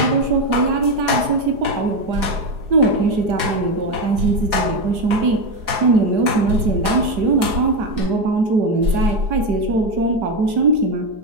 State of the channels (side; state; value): left; late; 4.8 ms